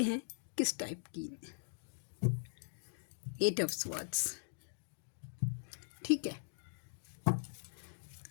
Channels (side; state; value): right; silent; digital silence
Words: हैं किस टाइप की। 8 ऑफ स्वॉर्ड्स, ठीक है।